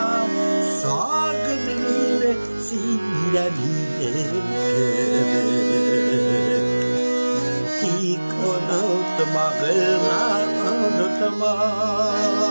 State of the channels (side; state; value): both; inverted; correlation -1.00